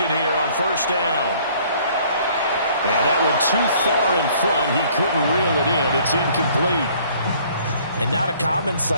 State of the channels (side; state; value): both; inverted; correlation -0.58